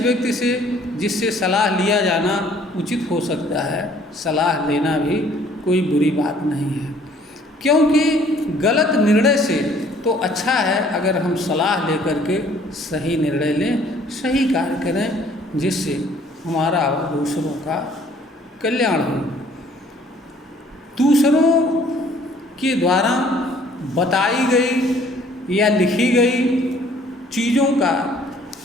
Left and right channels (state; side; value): normal; both; correlation 0.58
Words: से जिससे सलाह लिया जाना उचित हो सकता है, सलाह लेना भी कोई बुरी बात नहीं है। क्योंकि गलत निर्णय से तो अच्छा है अगर हम सलाह लेकर के सही निर्णय लें, सही कार्य करें, जिससे हमारा और दूसरों का कल्याण हो। दूसरों के द्वारा बताई गई या लिखी गई चीज़ों का